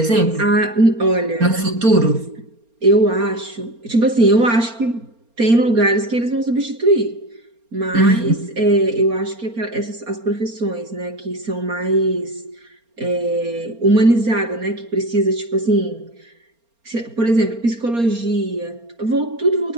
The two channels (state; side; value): late; left; 4.3 ms